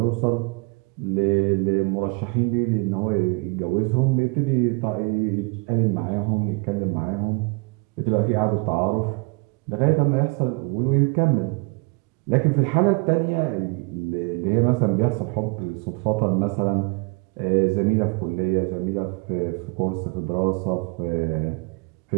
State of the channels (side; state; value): left; quieter; 31.0 dB